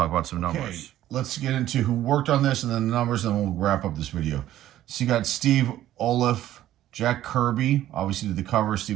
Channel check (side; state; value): left; quieter; 13.2 dB